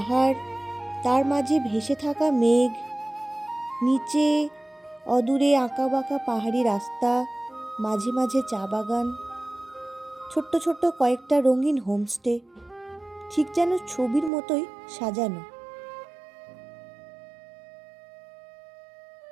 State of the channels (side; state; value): left; drops out; at 14.3 s